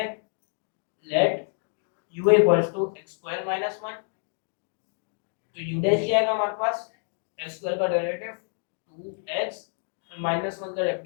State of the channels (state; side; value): silent; right; 60 dB below the other